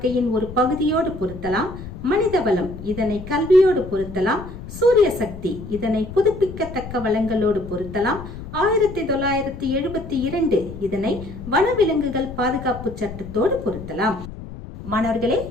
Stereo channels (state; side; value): noise; left; rumble, 12 dB below the sound